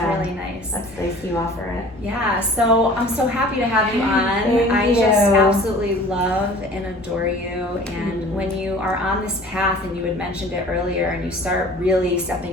really nice. That's nice you offer it. Yeah, so I'm so happy to have you on. Thank I you. just absolutely love and adore you. And when you are on this path, and you had mentioned it earlier, and you start really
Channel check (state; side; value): normal; both; correlation 0.46